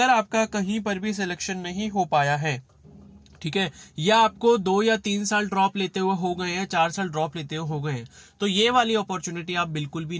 आपका कहीं पर भी सिलेक्शन नहीं हो पाया है, ठीक है, या आपको 2 या 3 साल ड्रॉप लेते हुए हो गए हैं, 4 साल ड्रॉप लेते हुए हो गए हैं, तो ये वाली अपॉर्चुनिटी आप बिल्कुल भी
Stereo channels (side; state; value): both; identical; correlation 1.00